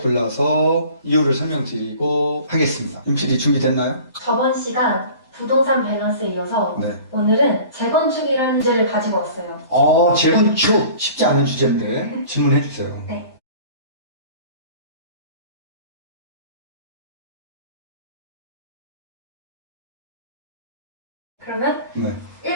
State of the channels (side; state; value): both; inverted; correlation -0.45